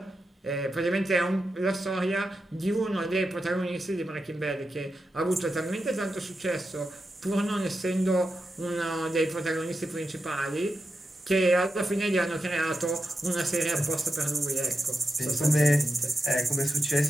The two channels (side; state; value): both; normal; correlation 0.89